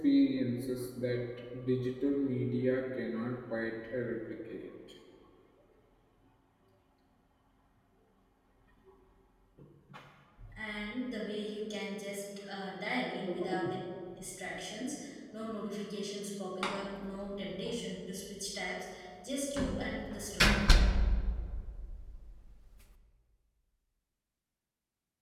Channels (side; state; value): both; identical; correlation 1.00